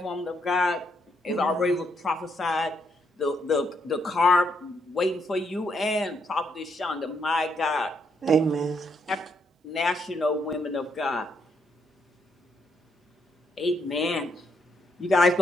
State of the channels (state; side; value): normal; both; correlation 0.76